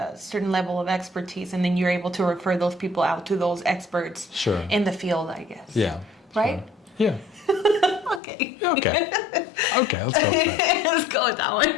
certain level of expertise, and then you're able to refer those people out to those experts in the field, I guess. Yeah. Right? Sure. Yeah. Okay. Okay, let's go with that. Let's go with that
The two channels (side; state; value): right; drops out; at 8.2 s